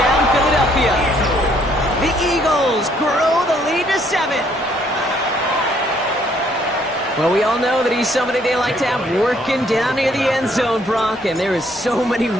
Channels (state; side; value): normal; both; correlation 0.66